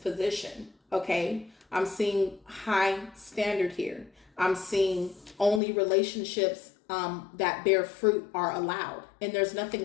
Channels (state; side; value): drops out; right; at 5.6 s